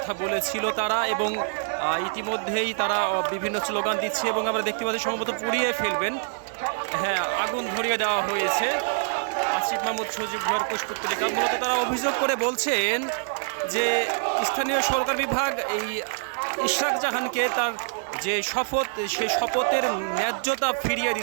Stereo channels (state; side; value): silent; left; digital silence